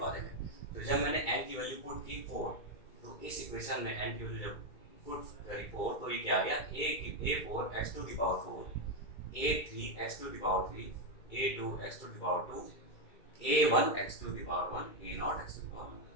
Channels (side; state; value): right; late; 2.3 ms